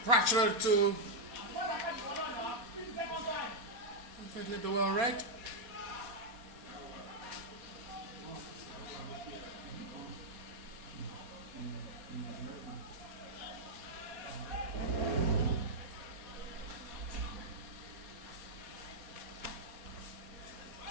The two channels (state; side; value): late; left; 4.2 ms